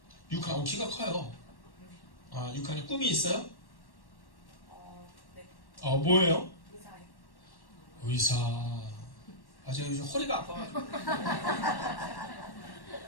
6학년. 키가 커요. 6학년. 꿈이 있어요? 네. 뭐예요? 의사요. 의사. 제가 요즘 허리가 아파가지고.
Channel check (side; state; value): right; late; 1.1 ms